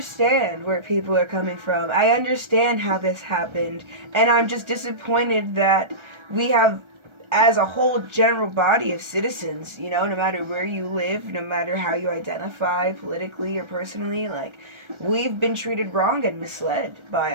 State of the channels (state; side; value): late; left; 1.3 ms